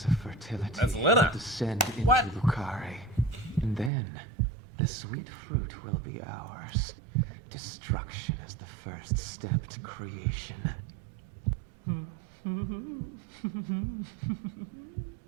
of fertility That's Lena. will descend into What? Lucare. And then, the sweet fruit will be ours. Destruction is the first step to creation.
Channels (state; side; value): drops out; left; at 3.9 s